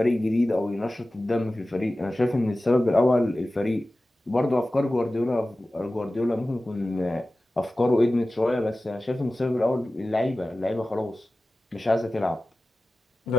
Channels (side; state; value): both; normal; correlation 0.96